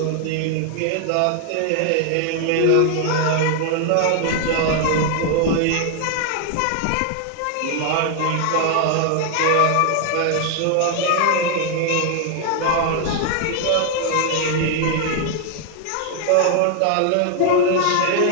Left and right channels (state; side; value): different; both; correlation 0.00